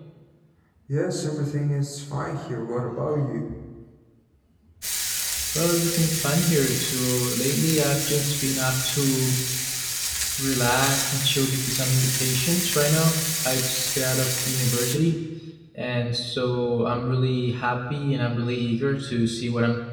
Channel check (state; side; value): identical; both; correlation 1.00